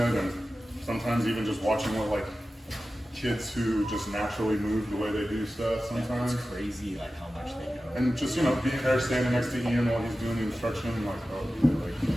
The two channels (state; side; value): normal; both; correlation 0.94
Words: and sometimes even just watching what like kids who just naturally move the way they do stuff sometimes. It's crazy like how much they know. And just, you know, being there standing next to Ian while he's doing the instruction, like, oh, yeah,